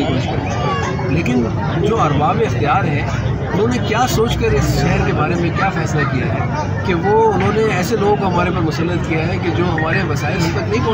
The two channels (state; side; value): identical; both; correlation 1.00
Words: की कोशिश करते हैं, लेकिन जो अरबाब इख्तियार हैं उन्होंने क्या सोचकर इस शहर के बारे में क्या फ़ैसला किया है कि वो उन्होंने ऐसे लोगों को हमारे पर मुसल्लत किया है कि जो हमारे वसाइल हम तक नहीं